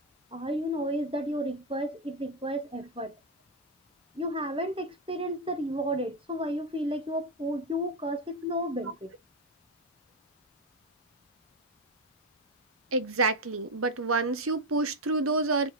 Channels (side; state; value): both; normal; correlation 0.07